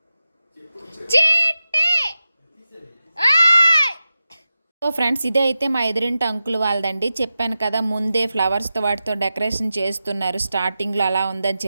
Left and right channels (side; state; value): both; inverted; correlation -0.93